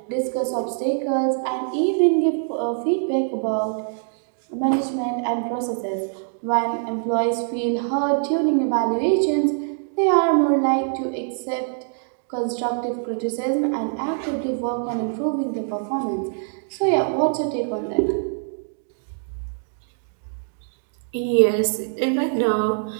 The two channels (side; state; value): left; silent; digital silence